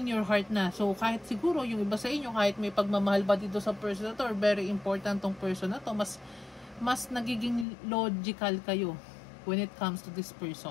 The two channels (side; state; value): right; drops out; at 7.7 s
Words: your heart na. So, kahit siguro, yung iba sa inyo, kahit may pagmamahal ba dito sa person na to, or very important tong person na to, mas nagiging logical kayo when it comes to this